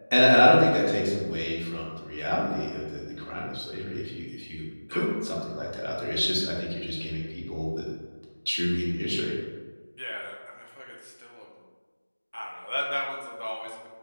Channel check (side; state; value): both; inverted; correlation -1.00